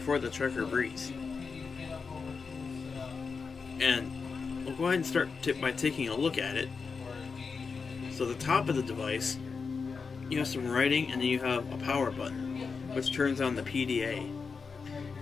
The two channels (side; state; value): right; quieter; 5.1 dB